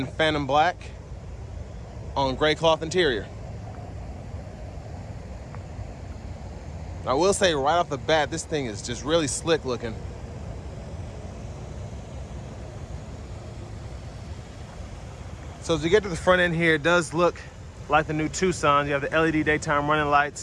Phantom Black on gray cloth interior. I will say right off the bat, this thing is just really slick looking. So as we get to the front end here, it does look like the new Tucson. You have the LED daytime running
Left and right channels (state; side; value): identical; both; correlation 1.00